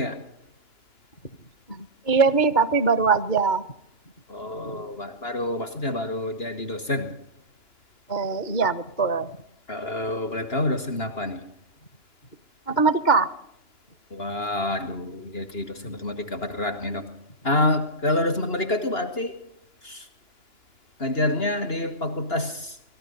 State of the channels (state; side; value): late; right; 2.9 ms